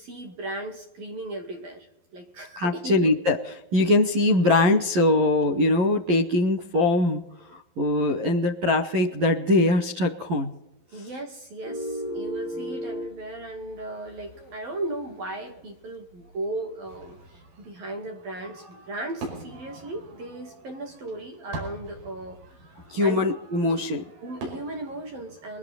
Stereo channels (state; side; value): late; left; 11 ms